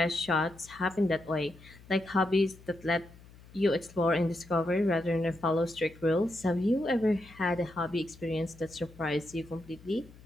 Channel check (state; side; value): noise; left; hum, 22 dB below the sound